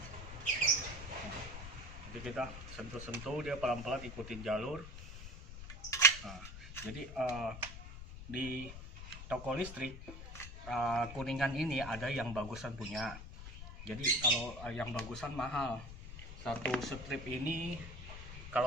Nah, jadi kita sentuh-sentuh dia pelan-pelan ikutin jalur. Nah, jadi di toko listrik Kuningan ini ada yang bagusan punya. Jadi kalau yang bagusan mahal. Satu strip ini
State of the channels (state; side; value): noise; left; rumble, 11 dB below the sound